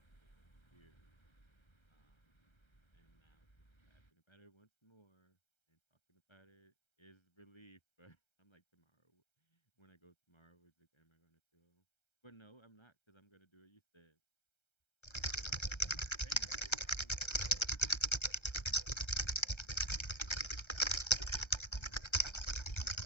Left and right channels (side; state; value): right; late; 1.3 ms